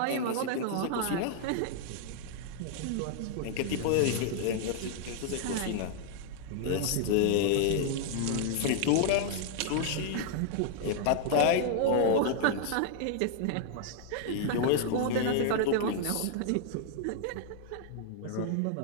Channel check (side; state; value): both; different; correlation -0.01